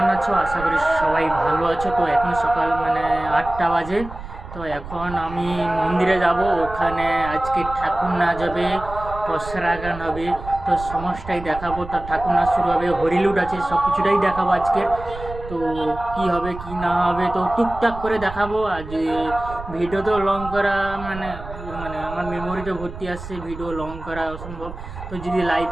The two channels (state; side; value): noise; right; rumble, 12 dB below the sound